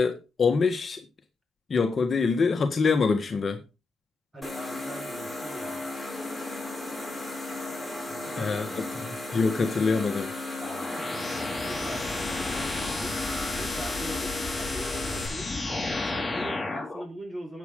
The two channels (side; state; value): right; quieter; 3.5 dB